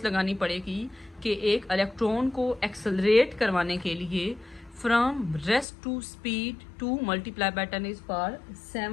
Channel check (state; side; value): drops out; right; at 5.7 s